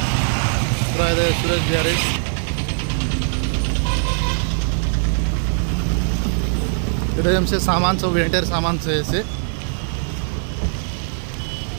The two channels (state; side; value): silent; left; digital silence